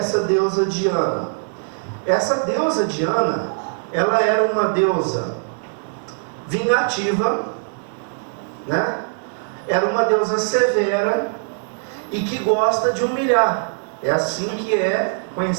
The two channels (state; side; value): silent; left; digital silence